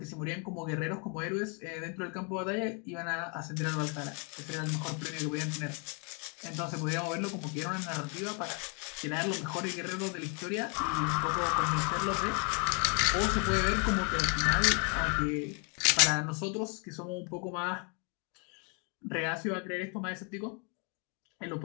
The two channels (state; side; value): quieter; right; 36.4 dB